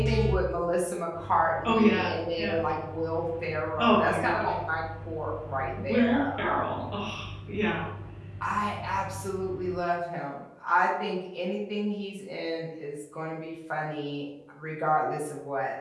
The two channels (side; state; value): both; identical; correlation 1.00